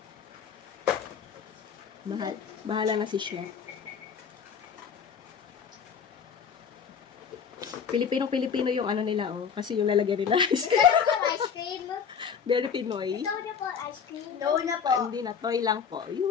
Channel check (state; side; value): quieter; right; 6.9 dB